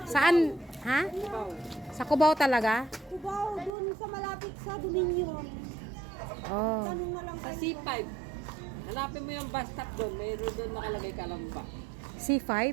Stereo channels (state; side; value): drops out; left; at 3.7 s